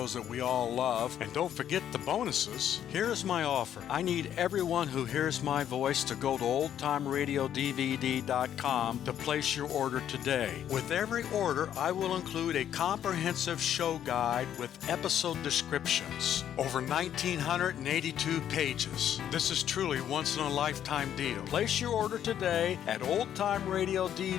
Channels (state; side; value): quieter; right; 10.2 dB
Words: that we all love. And don't forget the bonuses. Here's my offer. I need everyone who hears my voice to go to oldtimeradiodvd.com to place your order today. With every order, I will include a comprehensive show guide with episode descriptions. Over 1,982 pages. This is truly once-in-a-lifetime deal. Place your order today at